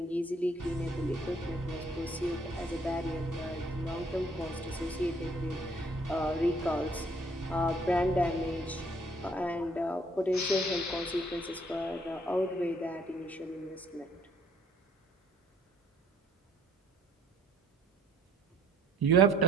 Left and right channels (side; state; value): both; normal; correlation 0.62